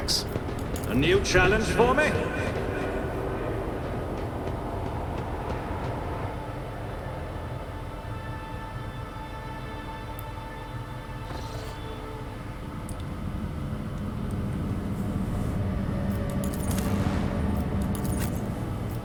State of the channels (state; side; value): identical; both; correlation 1.00